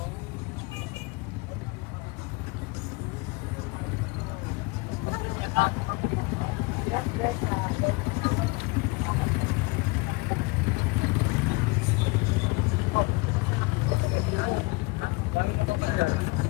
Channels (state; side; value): quieter; right; 26.6 dB